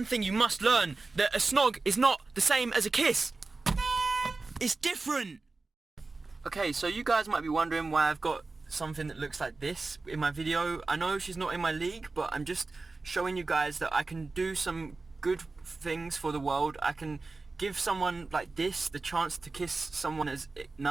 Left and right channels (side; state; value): left; quieter; 3.7 dB